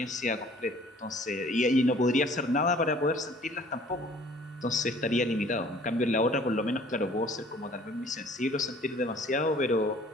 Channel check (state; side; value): normal; both; correlation 0.53